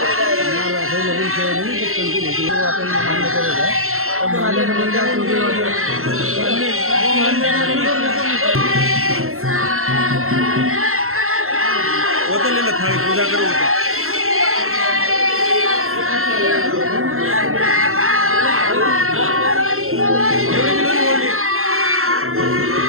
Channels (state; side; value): late; left; 0.62 ms